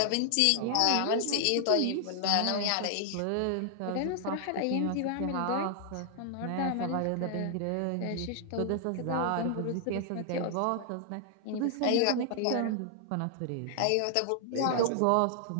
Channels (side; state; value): both; different; correlation 0.00